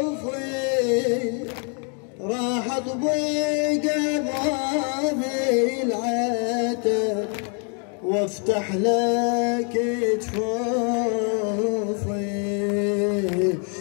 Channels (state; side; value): quieter; right; 39.6 dB